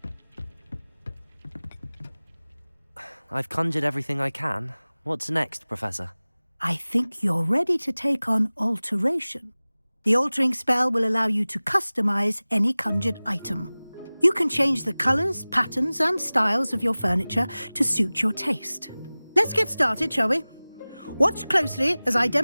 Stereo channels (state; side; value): inverted; both; correlation -0.99